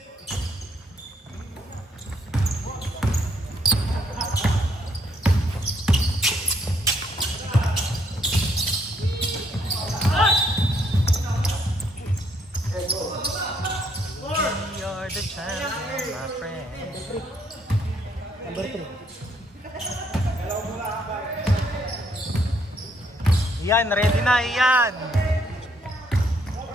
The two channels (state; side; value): normal; both; correlation 0.70